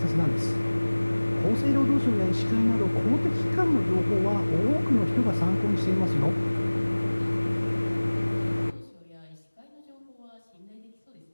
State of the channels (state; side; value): inverted; both; correlation -1.00